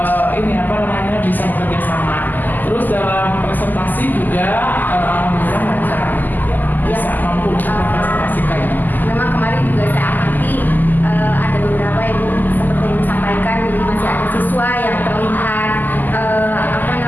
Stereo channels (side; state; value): right; late; 0.086 ms